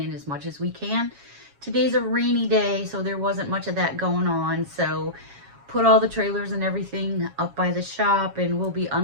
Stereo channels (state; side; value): late; left; 7.2 ms